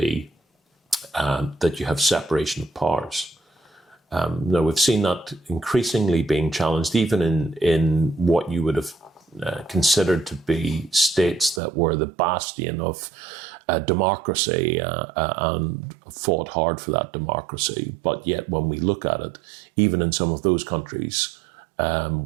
that you have separation of powers. Now, we've seen that increasingly being challenged, even in what you would have considered to be states that were the bastion of democracy and fought hard for that democracy. But yet, when we look at it, even in some of those countries,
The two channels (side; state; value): left; drops out; at 11.6 s